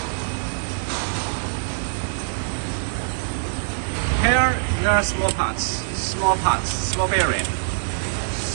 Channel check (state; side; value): silent; left; digital silence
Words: Here there are small bearing,